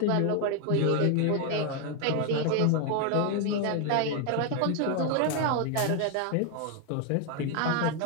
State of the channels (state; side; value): different; both; correlation 0.01